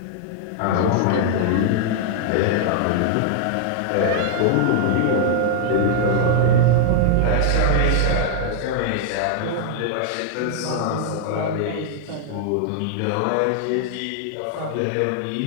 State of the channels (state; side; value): different; both; correlation -0.01